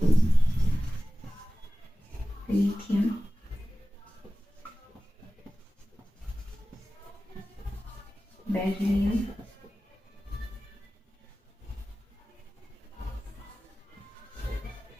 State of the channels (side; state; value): both; normal; correlation 0.96